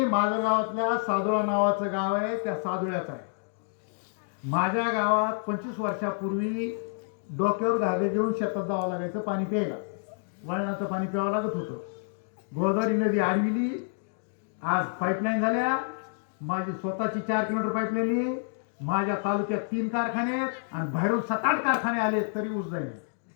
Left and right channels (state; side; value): silent; right; digital silence